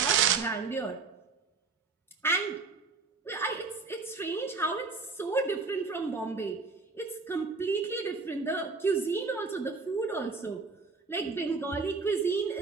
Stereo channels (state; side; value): quieter; left; 4.3 dB